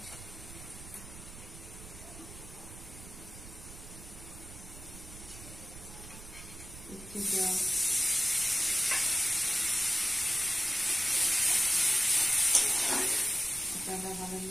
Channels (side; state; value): right; noise; rumble, 15 dB below the sound